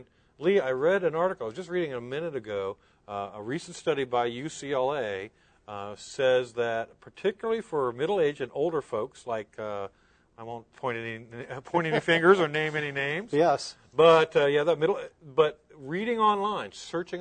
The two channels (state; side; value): identical; both; correlation 1.00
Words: Lee, I read an article, I was just reading it a minute ago, a recent study by UCLA says that particularly for middle-aged and older folks, like, I won't point any fingers or name any names. Yes. But, but reading online,